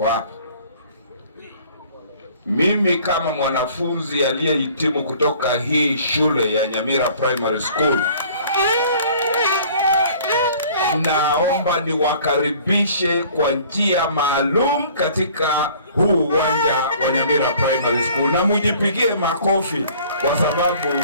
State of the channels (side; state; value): both; inverted; correlation -0.52